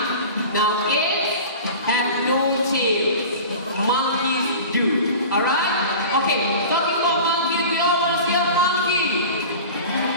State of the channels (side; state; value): both; inverted; correlation -0.36